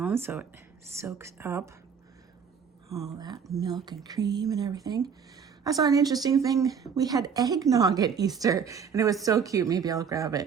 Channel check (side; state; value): left; quieter; 6.8 dB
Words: so it soaks up all that milk and cream and everything. I saw an interesting thing. We had eggnog at Easter and it was so cute. Maybe I'll grab